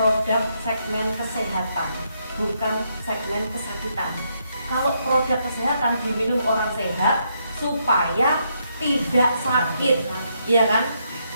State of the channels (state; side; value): inverted; both; correlation -0.77